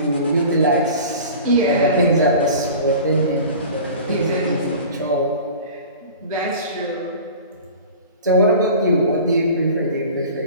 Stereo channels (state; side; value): inverted; both; correlation -0.39